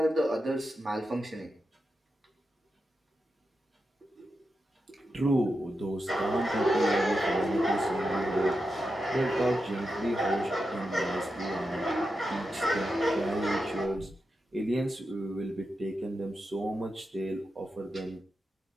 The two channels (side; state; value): both; normal; correlation 0.88